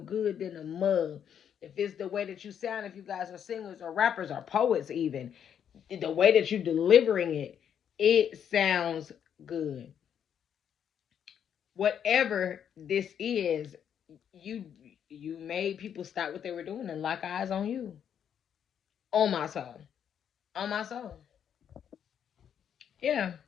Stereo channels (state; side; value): quieter; right; 8.7 dB